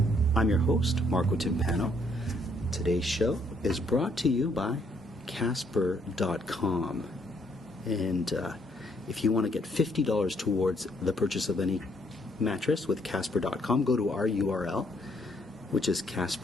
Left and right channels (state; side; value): normal; both; correlation 0.70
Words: I'm your host, Marco Timpano. Today's show is brought to you by Casper.com. And if you want to get $50 towards the purchase of any mattress with Casper.com, go to our URL, which is